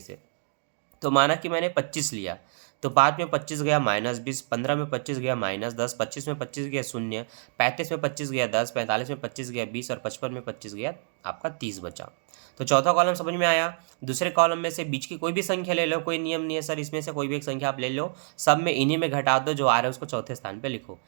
तो माना कि मैंने 25 लिया, तो 5 में 25 गया -20, 15 में 25 गया -10, 25 में 25 गया 0, 35 में 25 गया 10, 45 में 25 गया 20 और 55 में 25 गया आपका 30 बचा। तो चौथा कॉलम समझ में आया। दूसरे कॉलम में से बीच की कोई भी संख्या ले लो, कोई नियम नहीं है सर, इसमें से कोई भी एक संख्या आप ले लो, सब में इन्हीं में घटा दो, जो आ रहा है उसको चौथे स्थान पर लिखो।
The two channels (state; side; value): silent; left; digital silence